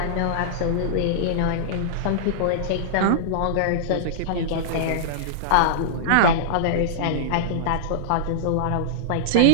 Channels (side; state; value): both; different; correlation -0.02